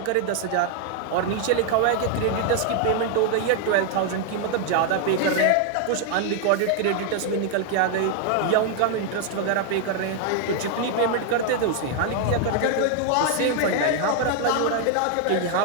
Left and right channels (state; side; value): different; both; correlation 0.00